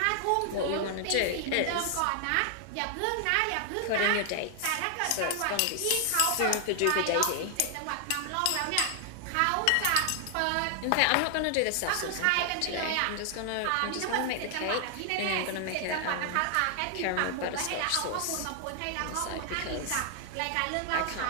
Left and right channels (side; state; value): both; different; correlation 0.00